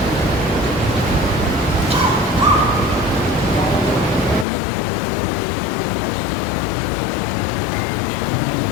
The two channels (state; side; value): drops out; right; at 4.5 s